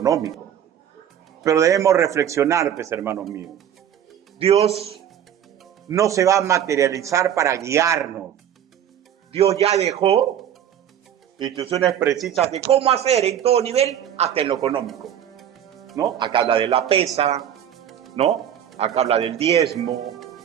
Pero debemos reflexionar, pues, hermanos míos. Dios no se va a materializar para guiarnos. Dios ya dejó instrucciones precisas de cómo hacer en todo nivel, hasta en lo económico, ¿no? Acá habla de la pesa, ¿no? Acá habla del diezmo,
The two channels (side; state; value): left; quieter; 9.9 dB